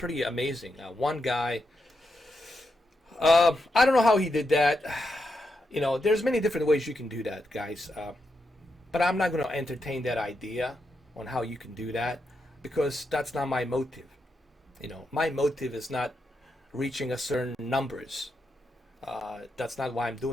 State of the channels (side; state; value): both; normal; correlation 0.84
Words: amazing. One guy. I don't know how he did that. You know, there's many different ways you can do that, guys. But I'm not going to entertain that idea on how you can do that because that's not my motive. You know, my motive is not reaching a certain numbers. That's not why I'm